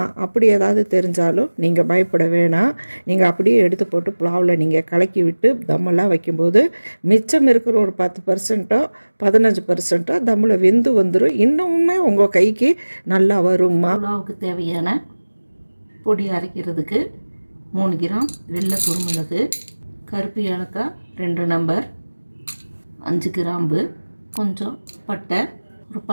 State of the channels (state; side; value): inverted; both; correlation -1.00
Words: அப்படி ஏதாவது தெரிஞ்சாலும் நீங்கள் பயப்பட வேணாம். நீங்கள் அப்படியே எடுத்து போட்டு புலாவில் நீங்கள் கலக்கி விட்டு தம்மெல்லாம் வைக்கும்போது மிச்சம் இருக்கிற ஒரு 10%ஓ 15%ஓ தம்மில் வெந்து வந்துடும். இன்னுமே உங்கள் கைக்கு நல்லா வரும்மா. புலாவுக்கு தேவையான பொடி அரைக்கிறதுக்கு 3 கிராம் வெள்ளை குருமிளகு, கருப்பு ஏலக்காய் 2 நம்பர், 5 கிராம்பு, கொஞ்சம் பட்டை, ஒரு